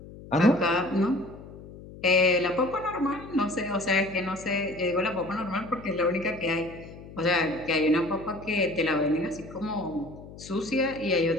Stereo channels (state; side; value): noise; left; hum, 16 dB below the sound